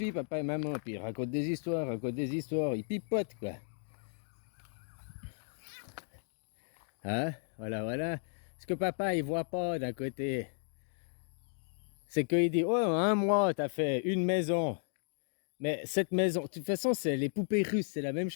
papa et maman, puis ils racontent des histoires, ils pipotent, quoi. Hein? Voilà. Ce que papa, il voit pas d'un côté, c'est qu'il dit, oh, en un mois, t'as fait une maison. Mais cette maison, de toute façon, c'est les poupées russes, c'est la même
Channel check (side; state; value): right; silent; digital silence